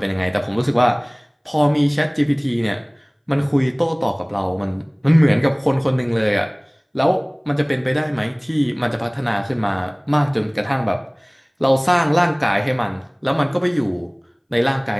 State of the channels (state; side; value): identical; both; correlation 1.00